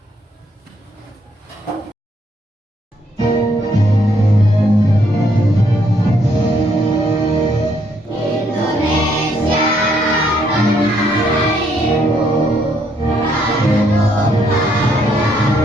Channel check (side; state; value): both; normal; correlation 0.71